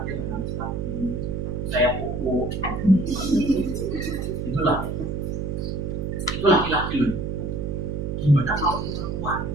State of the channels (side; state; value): right; noise; hum, 3 dB below the sound